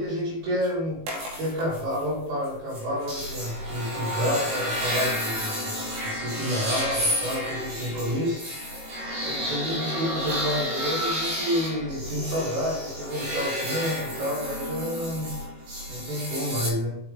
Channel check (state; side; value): late; left; 18 ms